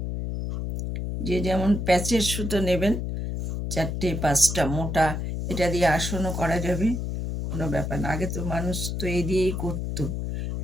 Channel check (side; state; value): left; noise; hum, 3 dB below the sound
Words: যে যেমন প্যাচের সুতো নেবেন, 4টে 5টা মোটা, এটা দিয়ে আসনও করা যাবে, কোনো ব্যাপার না। আগে তো মানুষ তো এই দিয়েই করতো।